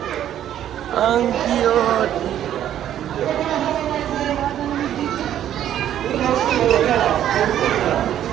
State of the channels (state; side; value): quieter; left; 11.0 dB